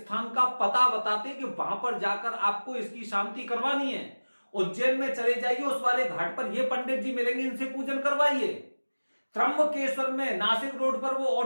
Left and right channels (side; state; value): both; inverted; correlation -1.00